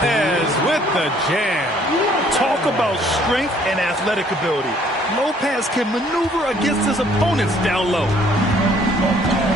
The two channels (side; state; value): both; normal; correlation 0.61